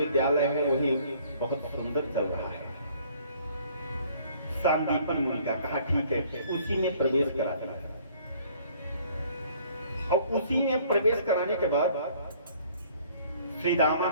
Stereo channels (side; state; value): both; inverted; correlation -0.57